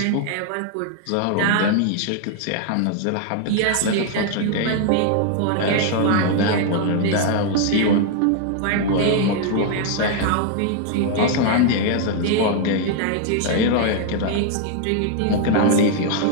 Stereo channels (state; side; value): different; both; correlation 0.00